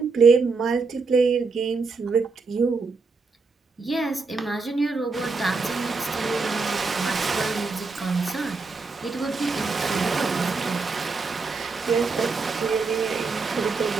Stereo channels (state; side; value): quieter; left; 4.3 dB